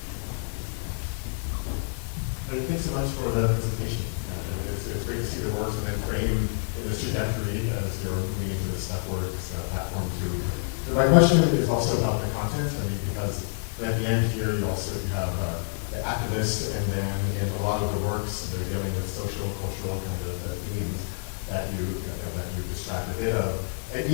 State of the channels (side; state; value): right; silent; digital silence